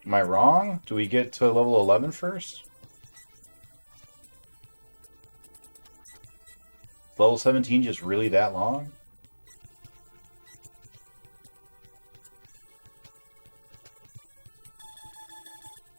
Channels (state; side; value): inverted; both; correlation -1.00